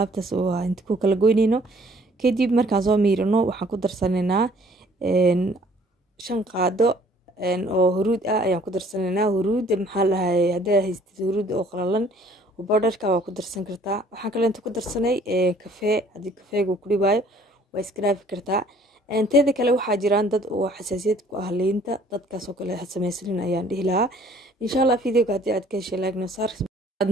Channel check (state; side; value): normal; both; correlation 0.57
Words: oo inta ku kala goyneyno kadib markaan soo miirino waxaan ku darsaneynaa 5 qaado oo huruud ah ayaan ku darsaneynaa huruud maxaa lahay haddii haystid huruud oo qalalan بودرka waa ku darsan kartaa waxaan kale inta ku darsanay kafee hadii kafeegu ku dhibaayo waa iskraafi kartaa inteeda kale waxaa jiraan dad oo xasaasiyad ku ah liinta dadkaas oo kale sameeysan ayaan dhihi lahaa insha Allah videoga hadii aad ka heshay like noo saar aad